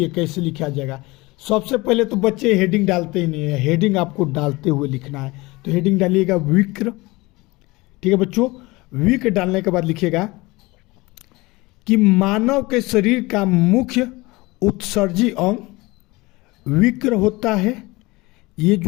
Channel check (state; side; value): quieter; right; 22.4 dB